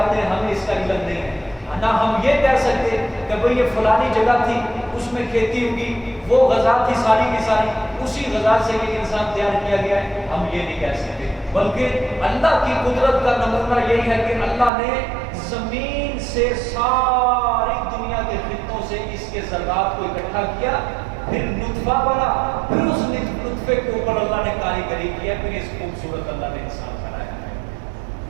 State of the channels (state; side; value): drops out; left; at 14.7 s